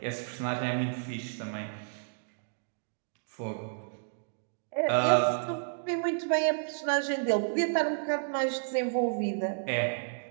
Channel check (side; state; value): left; silent; digital silence